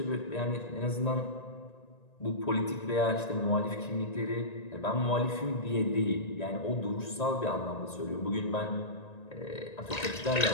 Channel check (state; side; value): late; right; 1.9 ms